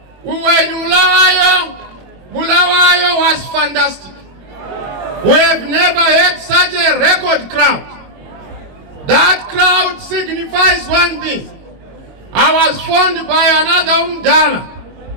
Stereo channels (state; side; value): late; left; 22 ms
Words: we were in Mulawayo. Mulawayo was fantastic. We have never had such a record crowd. That crowd signifies one thing. I was phoned by another Umdala.